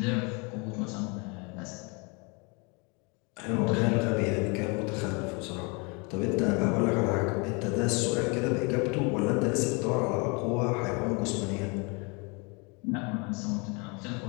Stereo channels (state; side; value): quieter; right; 30.9 dB